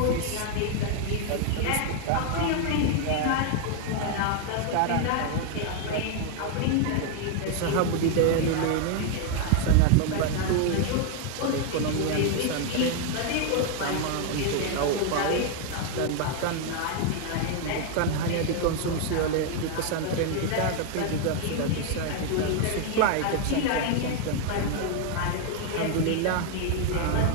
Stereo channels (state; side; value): different; both; correlation 0.00